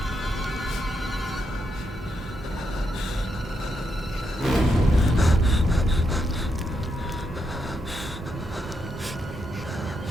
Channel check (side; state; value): both; normal; correlation 0.81